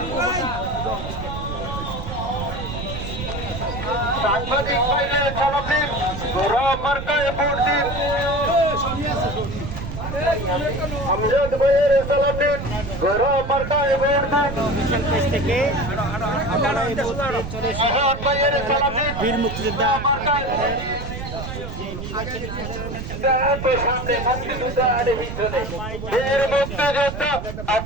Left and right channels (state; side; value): noise; right; rumble, 7 dB below the sound